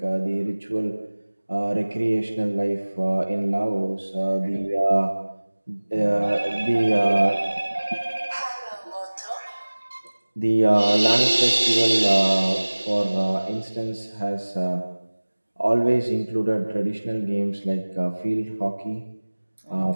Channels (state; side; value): inverted; both; correlation -1.00